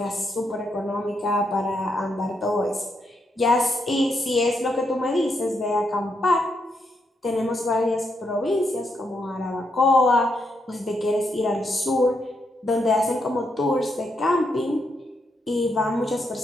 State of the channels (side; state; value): both; normal; correlation 0.80